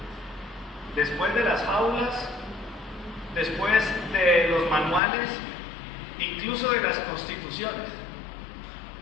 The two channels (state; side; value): drops out; right; at 5.0 s